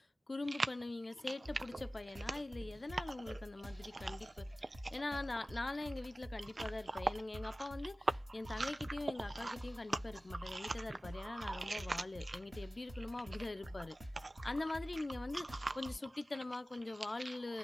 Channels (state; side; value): normal; both; correlation 0.97